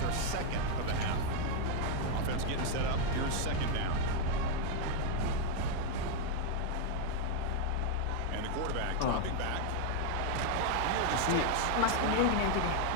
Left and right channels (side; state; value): both; different; correlation 0.00